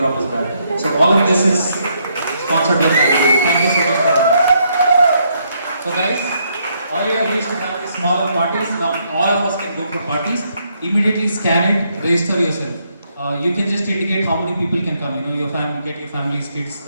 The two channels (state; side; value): inverted; both; correlation -0.74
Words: us back. So all of this is sponsored by Family. Thank you so much for that. So guys, earlier we used to have these smaller parties, now all of us can go for parties. Immediately scan it, register yourself. You can just indicate how many people can come, your family, get your family's kids,